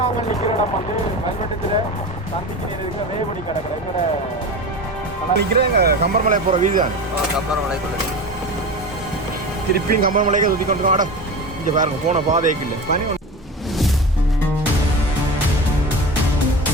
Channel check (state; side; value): normal; both; correlation 0.29